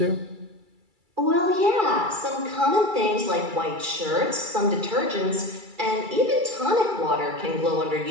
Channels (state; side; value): late; left; 2.3 ms